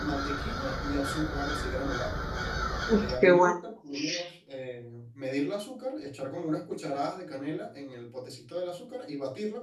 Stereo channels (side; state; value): both; identical; correlation 1.00